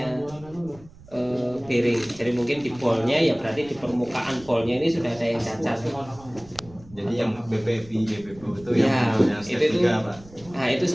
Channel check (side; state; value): right; noise; rumble, 22 dB below the sound